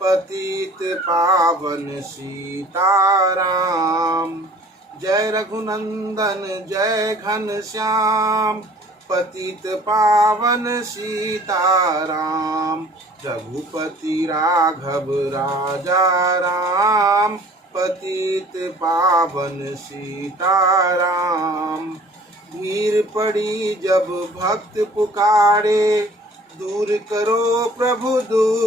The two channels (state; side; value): normal; both; correlation 0.50